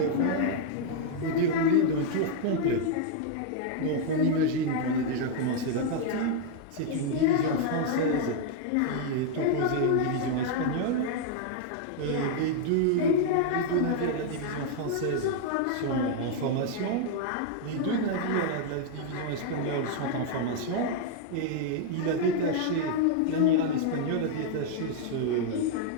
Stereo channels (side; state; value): both; different; correlation 0.00